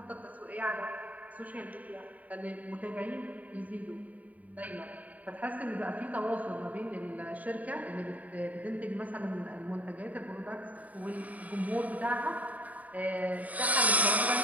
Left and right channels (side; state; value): left; late; 0.072 ms